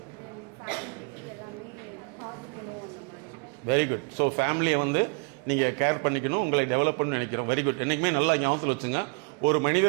வெரி குட். ஸோ ஃபேமிலியை வந்து நீங்கள் கேர் பண்ணிக்கணும், உங்களை டெவலப் பண்ணணும்னு நினைக்கிறோம். Very good. என்றைக்குமே நல்லா ஞாபகத்தில் வச்சுங்க. ஒரு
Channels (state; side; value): quieter; left; 33.1 dB